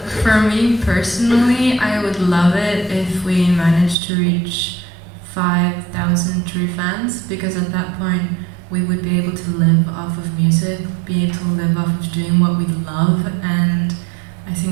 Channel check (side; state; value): left; drops out; at 4.0 s